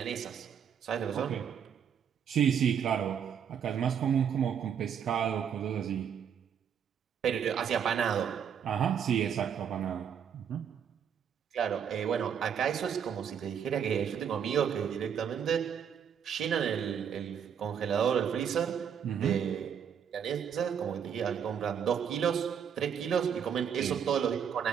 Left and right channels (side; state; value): left; quieter; 8.0 dB